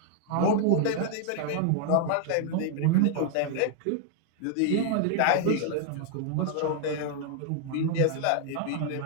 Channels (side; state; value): both; different; correlation 0.00